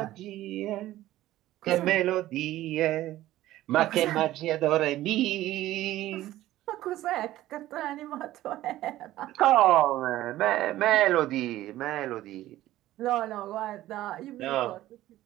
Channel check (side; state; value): left; quieter; 15.0 dB